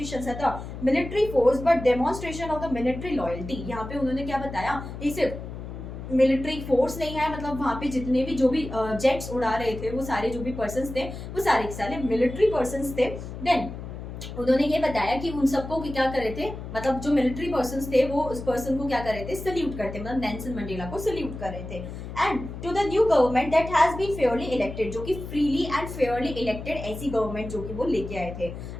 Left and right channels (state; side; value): noise; left; hum, 9 dB below the sound